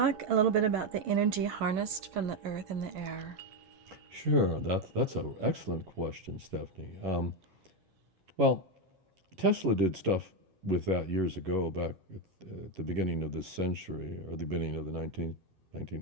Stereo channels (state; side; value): late; left; 11 ms